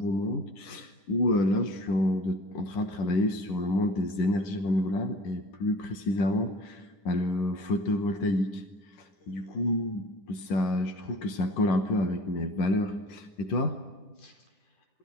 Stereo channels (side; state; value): right; late; 10 ms